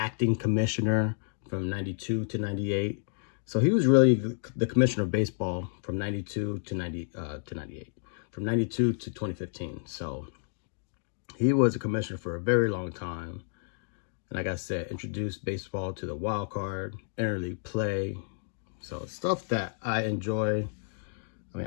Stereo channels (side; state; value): right; silent; digital silence